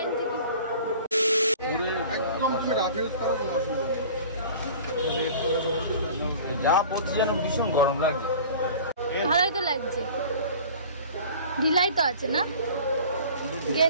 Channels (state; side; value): inverted; both; correlation -0.43